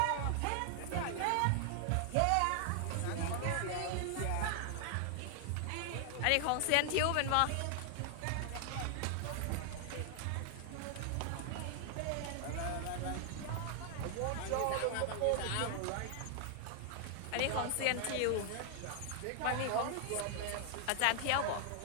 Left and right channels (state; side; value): different; both; correlation 0.00